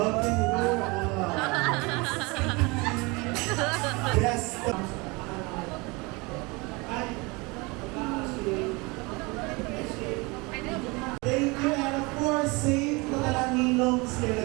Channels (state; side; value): quieter; left; 26.3 dB